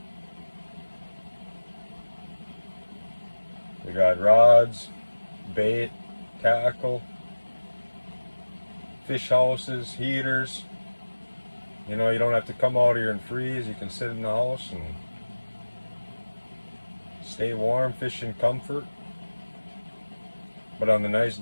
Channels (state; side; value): inverted; both; correlation -1.00